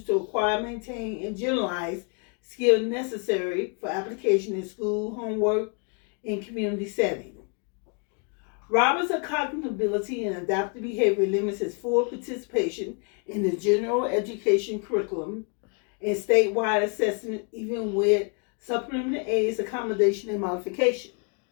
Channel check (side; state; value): right; quieter; 38.4 dB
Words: to acquire, maintain, and generalize skills necessary for application in school, homework, and community setting. Robert's cognitive ability and adaptive behavior limits his full participation in the general education curriculum and statewide assessment, even with supplementary aids, accommodation, and modification.